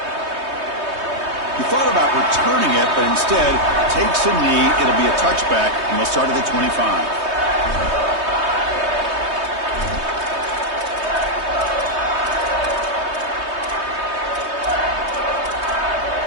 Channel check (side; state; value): left; late; 3.2 ms